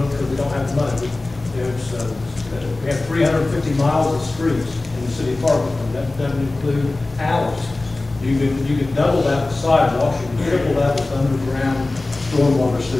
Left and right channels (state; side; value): quieter; right; 3.1 dB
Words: it because we don't have the money. We have 350 miles of streets in the city of Parkersburg. That doesn't include alleys. You can double that with sidewalks. You can triple that with underground stormwater